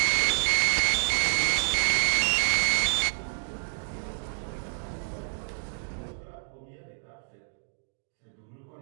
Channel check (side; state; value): left; silent; digital silence